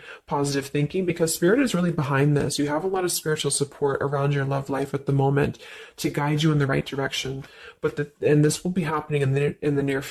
positive thinking because Spirit is really behind this. You have a lot of spiritual support around your love life at the moment to guide you in the right direction. And this will be happening in the near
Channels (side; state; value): both; identical; correlation 1.00